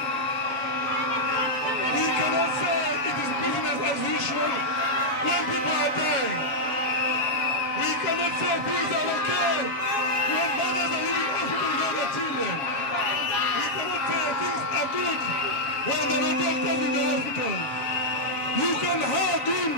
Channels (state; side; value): late; right; 7.3 ms